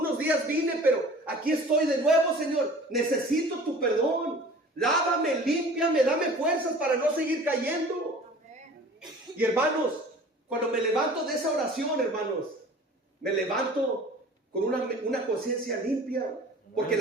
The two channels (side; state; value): both; normal; correlation 0.45